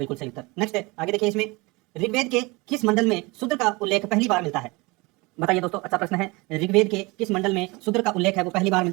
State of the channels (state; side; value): quieter; left; 24.9 dB